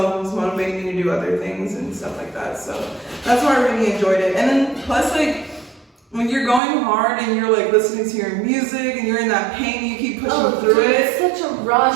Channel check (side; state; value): left; drops out; at 6.6 s